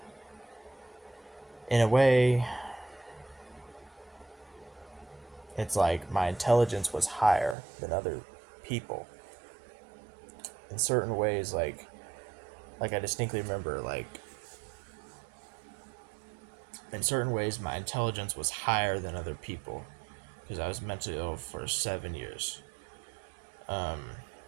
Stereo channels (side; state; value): left; drops out; at 7.6 s